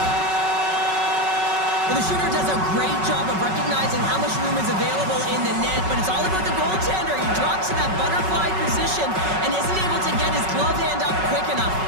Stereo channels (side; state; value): left; late; 5.3 ms